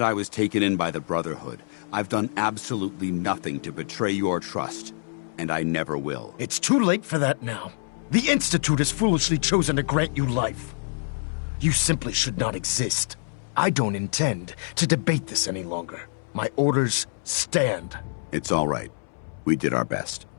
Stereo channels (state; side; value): silent; right; 61 dB below the other